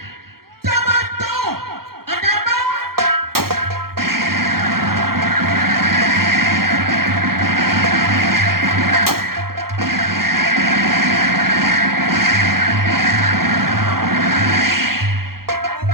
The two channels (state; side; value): late; left; 0.94 ms